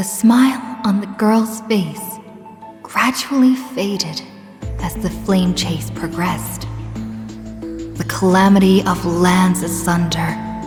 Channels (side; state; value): both; identical; correlation 1.00